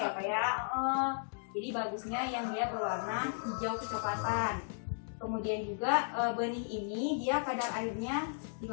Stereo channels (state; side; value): silent; right; digital silence